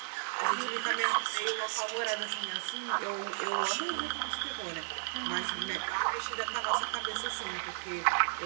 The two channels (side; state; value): left; silent; digital silence